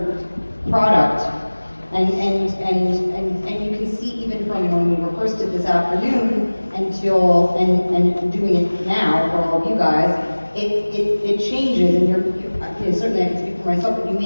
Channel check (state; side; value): inverted; both; correlation -1.00